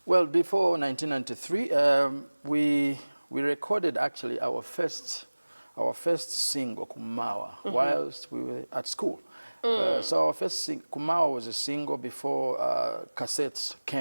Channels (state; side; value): inverted; both; correlation -1.00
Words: Well, before 1993, we recorded actually our first single, Kumawa, whilst we were at school. So our first Kumawa was a single before cassettes